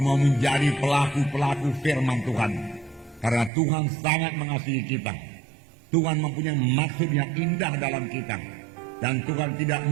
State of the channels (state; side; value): drops out; left; at 3.5 s